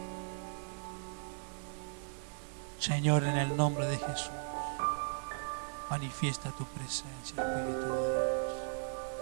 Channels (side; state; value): left; silent; digital silence